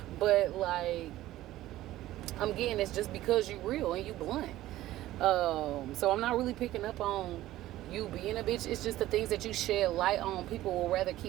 But, like, I'm getting it's just because you real and you blunt. So I'm not really picking up on you being a bitch. It's just the things that you shed light on, people will rather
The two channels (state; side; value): quieter; left; 15.2 dB